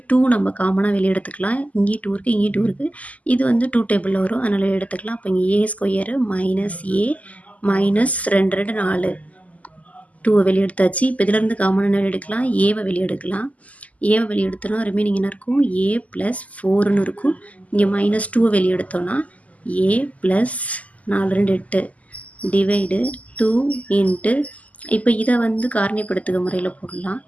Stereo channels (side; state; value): right; late; 0.073 ms